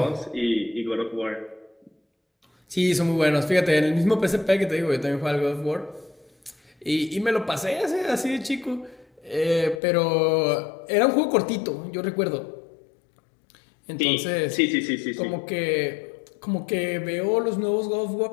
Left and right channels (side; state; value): right; drops out; at 9.8 s